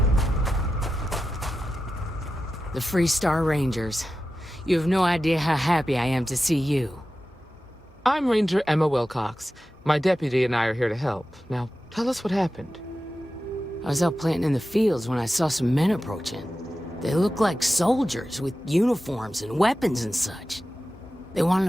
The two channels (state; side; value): normal; both; correlation 0.93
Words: The Freestar Rangers. You have no idea how happy I am to see you. I'm Ranger Emma Wilcox. My deputy and I are here to help. Now, tell us what happened. I was out planting in the fields when I saw some men approaching. They looked like soldiers with uniforms and weapons and such. They wanted